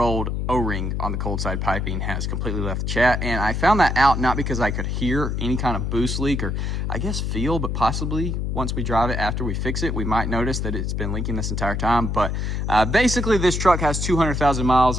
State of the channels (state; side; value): noise; left; hum, 1 dB below the sound